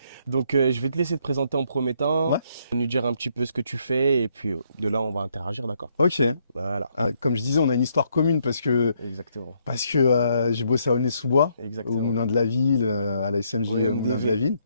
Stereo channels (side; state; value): both; inverted; correlation -0.72